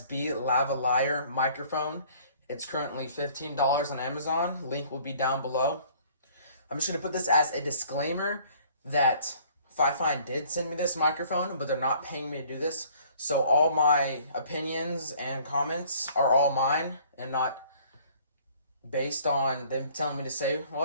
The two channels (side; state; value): both; inverted; correlation -0.56